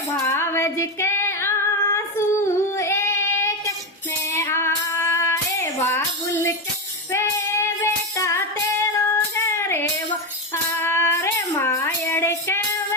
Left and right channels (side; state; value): both; normal; correlation 0.12